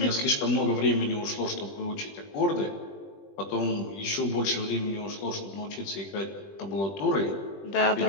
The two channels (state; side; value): late; right; 20 ms